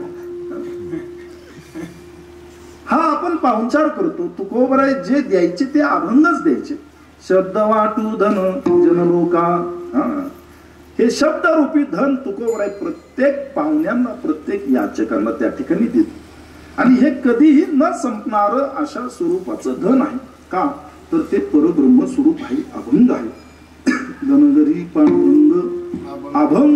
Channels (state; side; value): identical; both; correlation 1.00